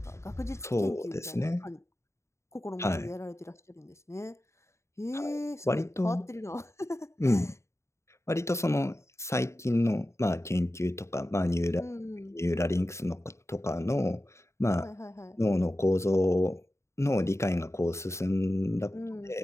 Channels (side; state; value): right; late; 0.14 ms